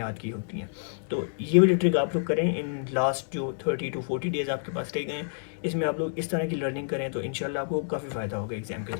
की होती हैं। तो ये वाली ट्रिक आप लोग करें इन लास्ट जो 30 to 40 डेज़ आपके पास रह गए हैं, इसमें आप लोग इस तरह की लर्निंग करें तो इंशाल्लाह आपको काफ़ी फ़ायदा होगा एग्जाम के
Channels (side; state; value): right; silent; digital silence